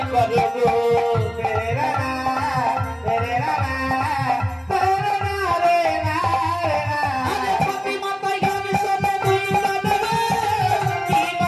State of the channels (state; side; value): identical; both; correlation 1.00